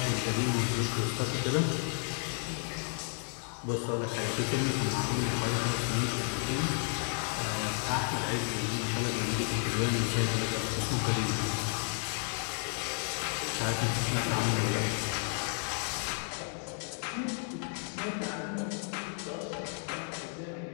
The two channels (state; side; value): silent; right; 56 dB below the other